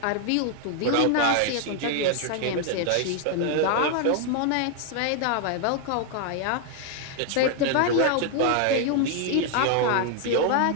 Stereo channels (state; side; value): different; both; correlation 0.00